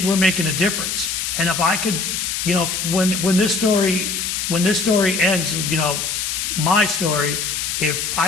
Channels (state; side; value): noise; left; hiss, 2 dB below the sound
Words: we're making a difference. And if I could, when this story ends, my story, if